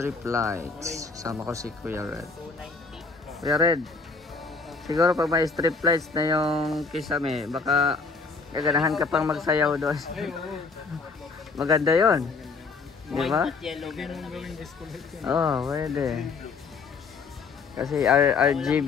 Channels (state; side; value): quieter; right; 4.5 dB